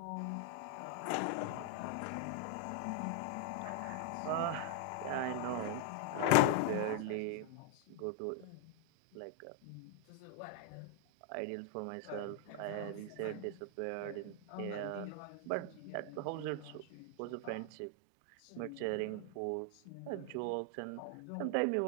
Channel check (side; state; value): both; different; correlation 0.00